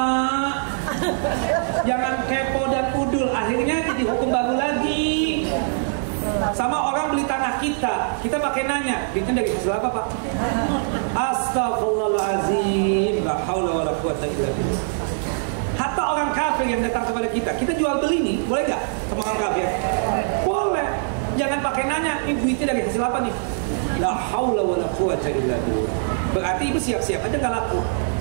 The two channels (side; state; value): left; silent; digital silence